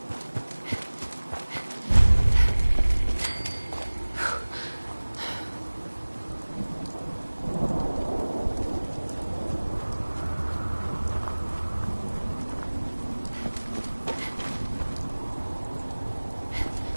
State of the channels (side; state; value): both; inverted; correlation -1.00